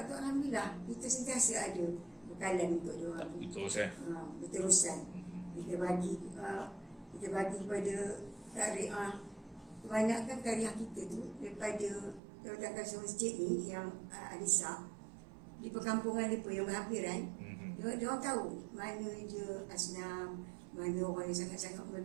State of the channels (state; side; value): drops out; left; at 12.2 s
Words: tu, alhamdulillah kita sentiasa ada bekalan untuk diorang. Berterusan. Kita bagi kepada tariah. Kebanyakan tariah kita tu daripada Jawatan Masjid ni yang Anisa di perkampungan mereka yang berhampiran, dia orang tahu mana dia asnam, mana orang yang sangat-sangat